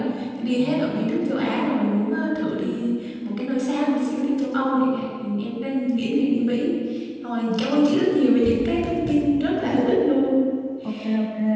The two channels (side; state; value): both; identical; correlation 1.00